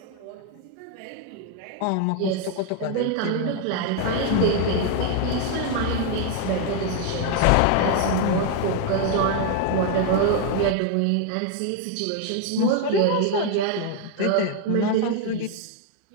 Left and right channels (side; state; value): both; different; correlation 0.00